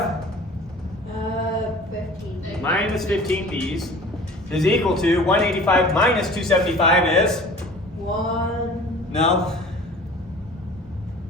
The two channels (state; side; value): normal; both; correlation 0.44